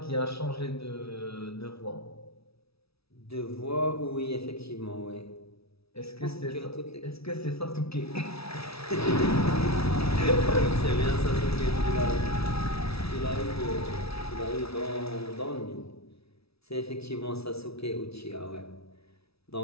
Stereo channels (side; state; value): right; late; 0.77 ms